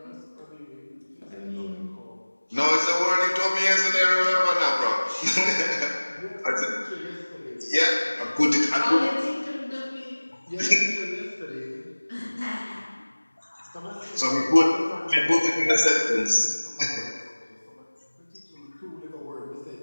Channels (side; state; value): both; inverted; correlation -1.00